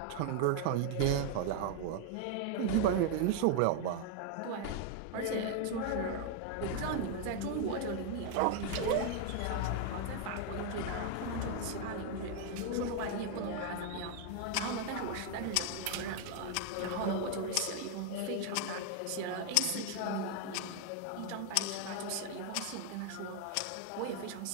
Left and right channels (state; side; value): different; both; correlation 0.00